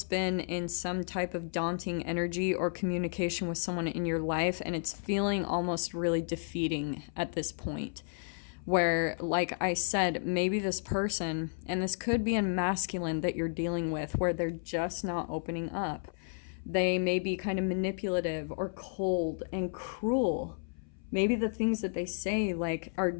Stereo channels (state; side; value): silent; right; 56 dB below the other